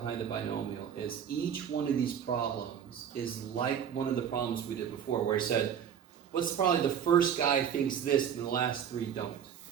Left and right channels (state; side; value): quieter; left; 8.5 dB